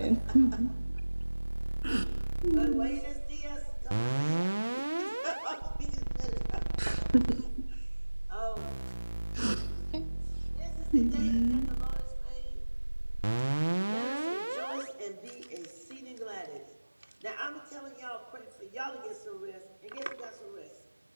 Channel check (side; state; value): both; inverted; correlation -1.00